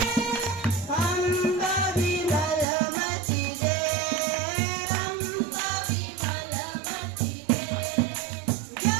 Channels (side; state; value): left; drops out; at 2.7 s